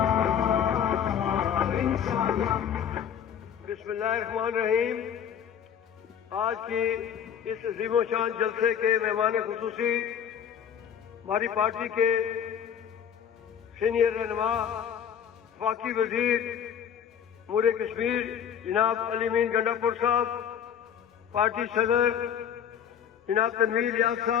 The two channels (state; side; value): quieter; right; 8.5 dB